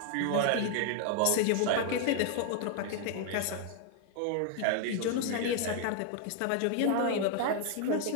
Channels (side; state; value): both; different; correlation 0.00